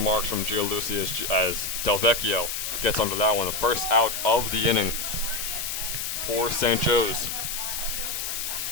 from Gialucci as Delvecchio gets under that one. The first out of the inning for St. Joe's.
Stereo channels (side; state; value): left; noise; hiss, 3 dB below the sound